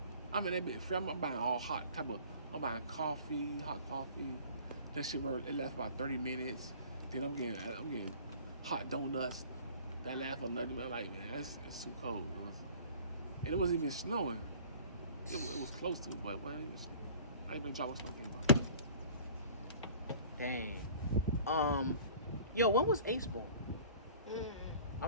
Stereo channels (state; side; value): inverted; both; correlation -0.47